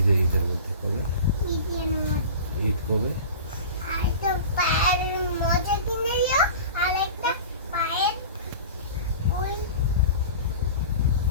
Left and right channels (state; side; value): inverted; both; correlation -0.36